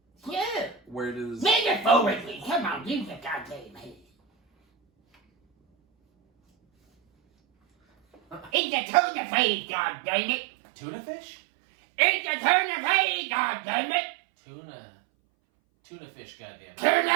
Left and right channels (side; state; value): left; drops out; at 8.5 s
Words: Yeah. Where does? Metaphorically, come on, use the goddamn head. It's a turn of phrase, goddammit. Tuna fish? It's a turn of phrase, goddammit. Tuna fish, goddamn. Turn